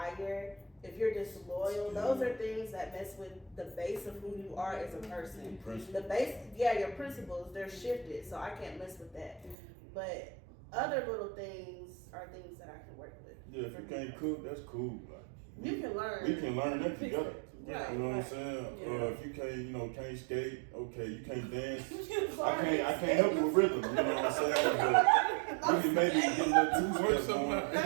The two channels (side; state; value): left; drops out; at 9.6 s